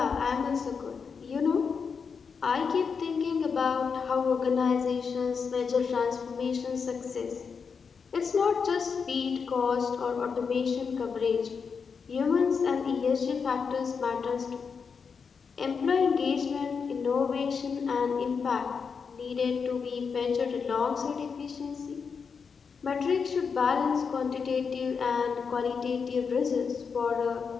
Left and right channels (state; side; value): quieter; right; 5.8 dB